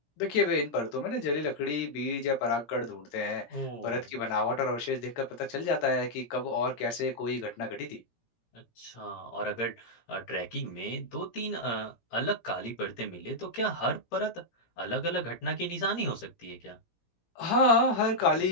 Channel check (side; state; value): right; late; 17 ms